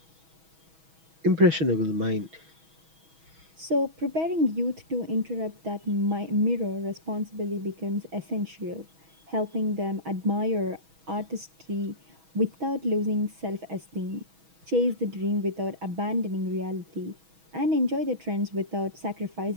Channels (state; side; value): late; left; 6.2 ms